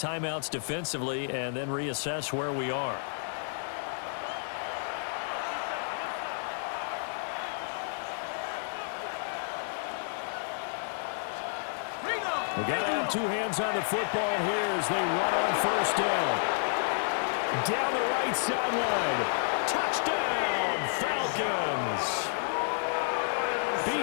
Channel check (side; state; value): right; silent; digital silence